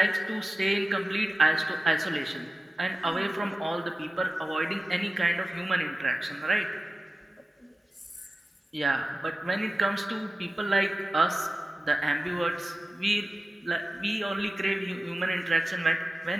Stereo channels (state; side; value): normal; both; correlation 0.95